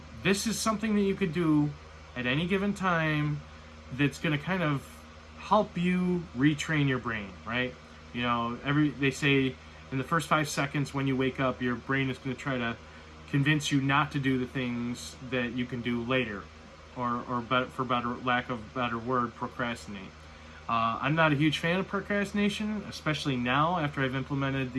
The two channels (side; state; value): both; identical; correlation 1.00